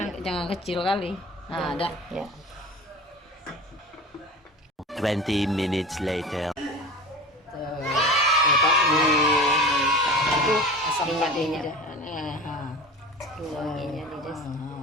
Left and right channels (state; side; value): normal; both; correlation 0.34